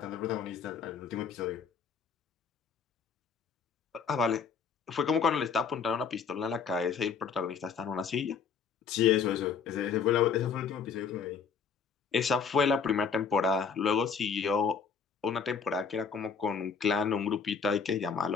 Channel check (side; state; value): right; quieter; 6.1 dB